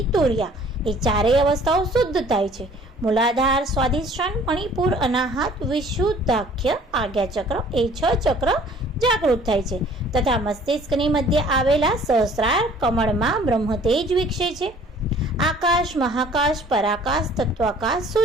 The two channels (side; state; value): both; normal; correlation 0.53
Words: તુર્યા એ 4 અવસ્થાઓ શુદ્ધ થાય છે. મૂલાધાર, સ્વાધિષ્ઠાન, મણિપુર, અનાહત, વિશુદ્ધાખ્ય, આજ્ઞાચક્ર એ 6 ચક્ર જાગૃત થાય છે. તથા મસ્તિષ્કની મધ્ય આવેલા સહસ્રાર કમળમાં બ્રહ્મતેજ વિકસે છે. આકાશ, મહાકાશ, પરાકાશ, તત્વાકાશ,